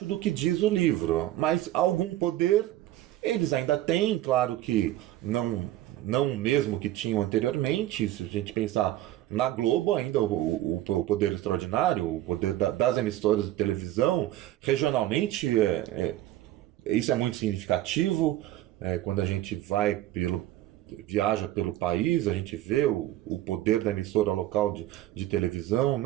do que diz o livro. Mas algum poder eles ainda têm, claro que não mesmo que tinham anteriormente. Se a gente pensar na Globo, ainda o poder extraordinário, o poder das emissoras de televisão, regionalmente, isso é muito significativo. Quando a gente viaja pelo país, a gente vê o poder da emissora local de televisão.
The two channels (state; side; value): quieter; left; 14.4 dB